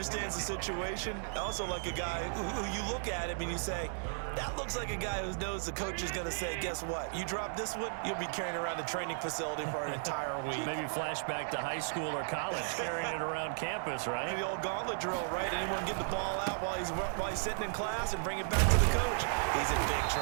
the situation. I also like a guy who you look at him and you say, that looks like a guy who knows the coach is going to say, guess what? You drop this one, you'll be carrying around the training facility for an entire week. Maybe flashback to high school or college, carrying it around campus, right? The old gauntlet drill, right? Anyone get the ball out while he's sitting in class and bring it back to the coach? He's in big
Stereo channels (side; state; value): left; silent; 54 dB below the other